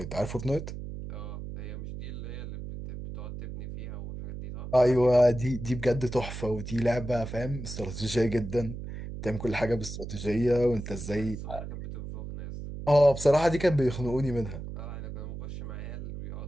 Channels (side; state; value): right; noise; hum, 9 dB below the sound